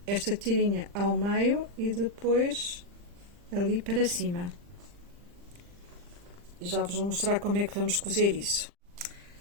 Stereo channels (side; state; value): left; late; 40 ms